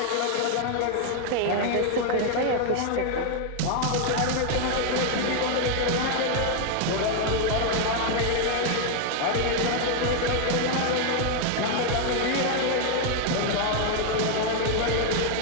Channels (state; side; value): different; both; correlation 0.00